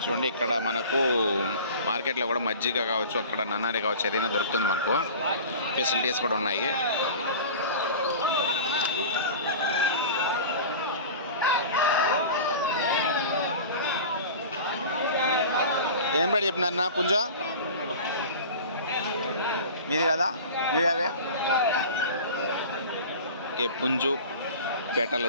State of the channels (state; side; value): inverted; both; correlation -0.37